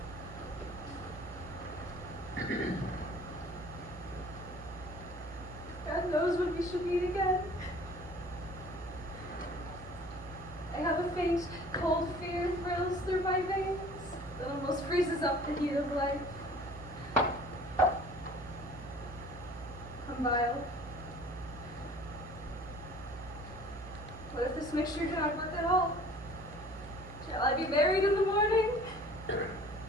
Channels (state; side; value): normal; both; correlation 0.49